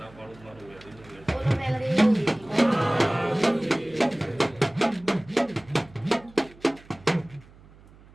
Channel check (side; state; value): right; noise; hum, 24 dB below the sound